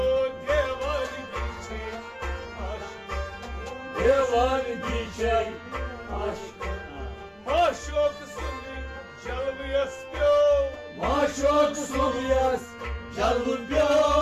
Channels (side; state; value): both; identical; correlation 1.00